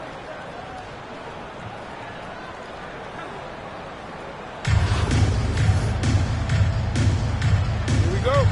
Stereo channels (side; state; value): both; identical; correlation 1.00